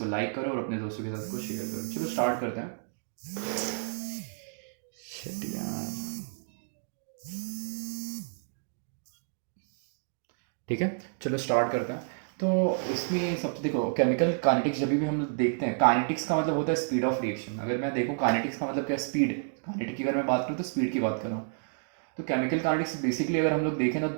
लाइक करो और अपने दोस्तों के साथ इसको शेयर करो। चलो स्टार्ट करते हैं। Shit यार। ठीक है, चलो स्टार्ट करते हैं। तो इसमें सबसे देखो, केमिकल काइनेटिक्स जब भी हम लोग देखते हैं, काइनेटिक्स का मतलब होता है स्पीड ऑफ रिएक्शन। अगर मैं देखूँ काइनेटिक्स का मतलब क्या, स्पीड। काइनेटिक की अगर मैं बात करूँ तो स्पीड की बात कर रहा हूँ। तो केमिकल काइनेटिक्स बेसिकली अगर हम लोग देखें ना,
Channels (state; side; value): silent; left; digital silence